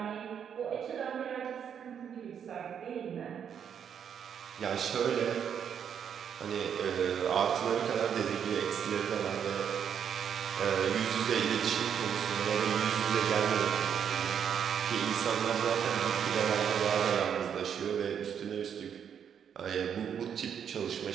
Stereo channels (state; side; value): quieter; left; 8.1 dB